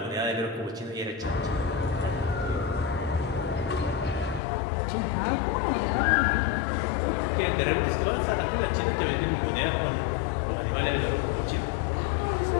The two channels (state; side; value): drops out; right; at 4.4 s